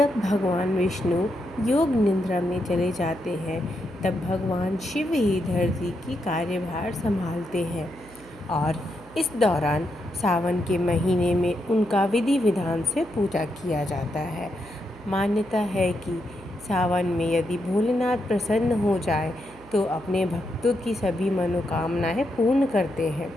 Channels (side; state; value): right; noise; hum, 22 dB below the sound